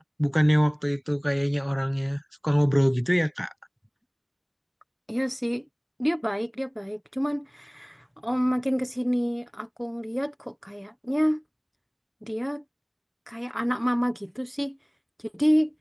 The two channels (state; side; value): identical; both; correlation 1.00